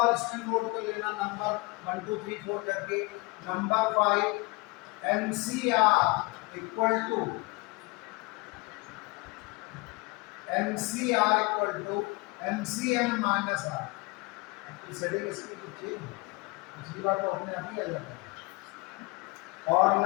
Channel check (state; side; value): quieter; right; 25.9 dB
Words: इसमें नोट कर लेना, नंबर 1 2 3 4 करके। Number 5 NCR equal to NCN minus R। Setting इसकी कुछ चेंज है, पिछली बार तो अपने आप ही आ जाता है। और